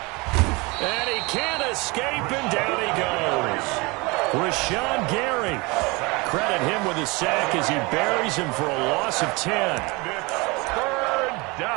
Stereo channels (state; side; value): quieter; left; 25.9 dB